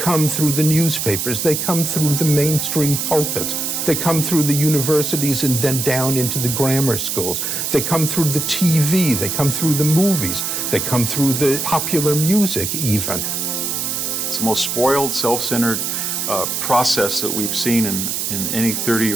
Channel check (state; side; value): noise; right; hiss, 2 dB below the sound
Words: through the newspapers, they come through the mainstream pulpits, they come through the universities and then down into the grammar schools. They come through the TV, they come through the movies, they come through the popular music even. It's the most spoiled, self-centered process that we've seen in any 30